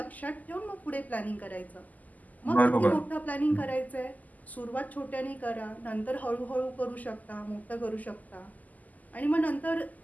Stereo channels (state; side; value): late; right; 0.079 ms